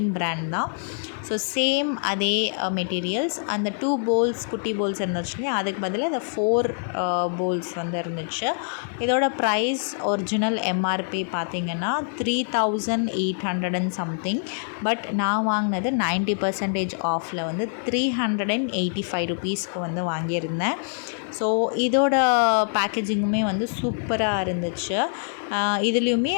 பிராண்ட் தான். ஸோ சேம் அதே மெட்டீரியல்ஸ். அந்த 2 பவுல்ஸ் குட்டி பவுல்ஸ் இருந்துச்சு, அதுக்கு பதிலாக இந்த 4 பவுல்ஸ் வந்து இருந்துச்சு. இதோட ப்ரைஸ் ஒரிஜினல் எம்ஆர்பி பார்த்திங்கன்னா 3800 and something. பட் நான் வாங்கினது 90% ஆஃபில் வந்து 385 ருபீஸ்க்கு வந்து வாங்கியிருந்தேன். ஸோ இதோட பேக்கேஜிங்குமே வந்து சூப்பராக இருந்துச்சு. இதுலேயுமே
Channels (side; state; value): right; silent; 62 dB below the other